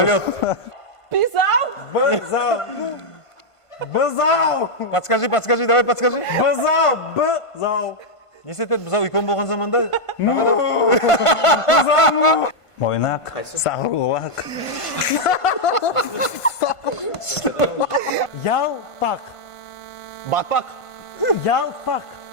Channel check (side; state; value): right; late; 1.5 ms